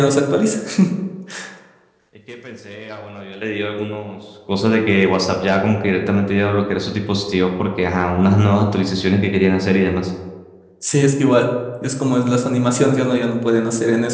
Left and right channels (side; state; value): both; identical; correlation 1.00